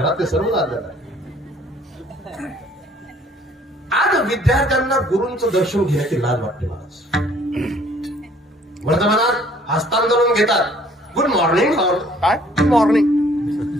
ते सर्वच आज्ञाधारी. आज विद्यार्थ्यांना गुरूंचं दर्शन घेण्याची लाज वाटते. मला वर्तमानात हस्तांदोलन घेतात. Good morning sir. काय गुड मॉर्निंग?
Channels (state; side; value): normal; both; correlation 0.58